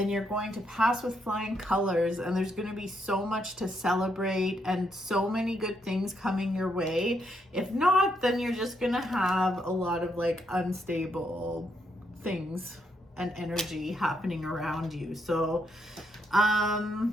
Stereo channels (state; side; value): normal; both; correlation 0.77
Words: you're going to pass with flying colors, and there's going to be so much to celebrate and so many good things coming your way. If not, then you're just going to have a lot of like unstable things and energy happening around you. So,